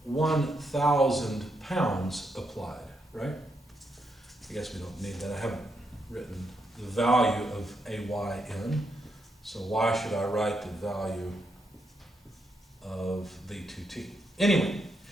1,000 pounds applied, right? I guess we don't need that. I haven't written the value of AY in, so why should I write the value of the 2T? Anyway,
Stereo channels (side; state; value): both; normal; correlation 0.80